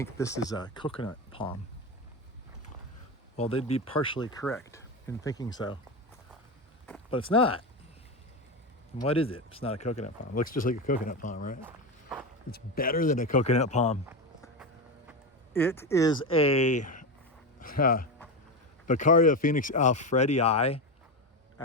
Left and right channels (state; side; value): normal; both; correlation 0.16